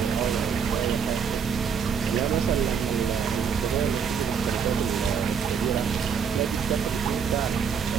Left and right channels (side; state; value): left; quieter; 6.8 dB